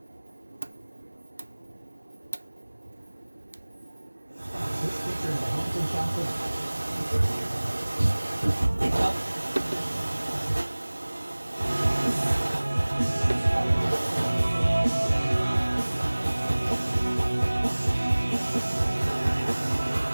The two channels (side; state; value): both; inverted; correlation -1.00